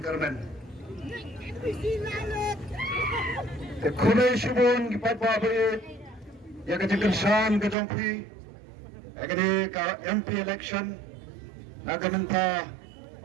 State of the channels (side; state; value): left; drops out; at 7.8 s